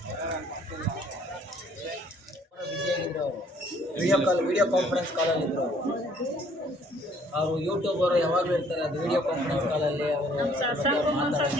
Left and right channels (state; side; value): normal; both; correlation 0.60